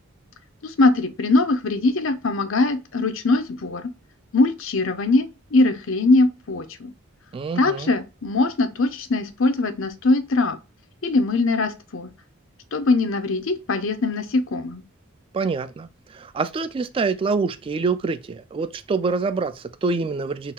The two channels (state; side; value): normal; both; correlation 0.51